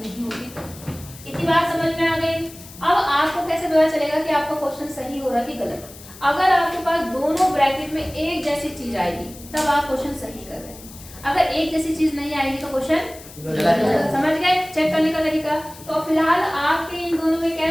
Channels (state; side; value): noise; left; hiss, 18 dB below the sound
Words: होगी तो। इतनी बात समझ में आ गई। अब आपको कैसे पता चलेगा कि आपका क्वेश्चन सही हो रहा है कि गलत? अगर आपके पास दोनों ब्रैकेट में एक जैसी चीज आएगी तब आप क्वेश्चन सही कर रहे हैं। अगर एक जैसी चीज नहीं आएगी तो क्वेश्चन गलत। समझ गए चेक करने का तरीका? तो फिलहाल आपके इन दोनों में